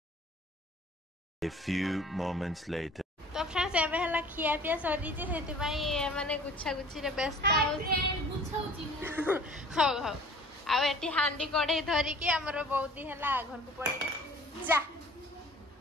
A few moments later. तो फ्रेंड्स एबे हला खिया पिया सरी जे हेति भाई माने गुच्छा गुच्छी रे व्यस्त हो हो आ एटी हांडी कढ़े धरी के हमरो बहुत ही हला घर को पड़ी जा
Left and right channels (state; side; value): normal; both; correlation 0.48